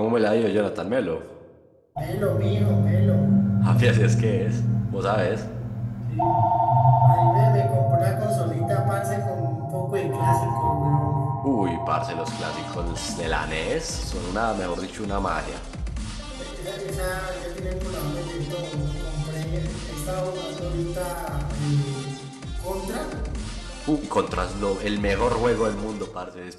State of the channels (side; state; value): both; identical; correlation 1.00